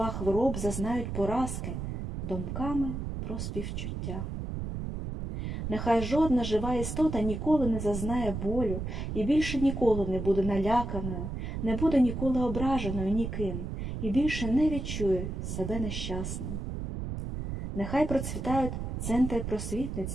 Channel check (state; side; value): noise; right; rumble, 5 dB below the sound